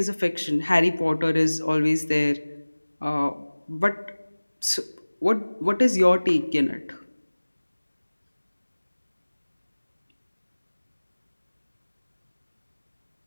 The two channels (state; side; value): inverted; both; correlation -1.00